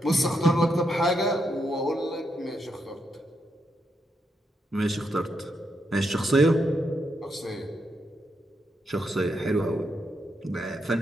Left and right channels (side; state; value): both; normal; correlation 0.81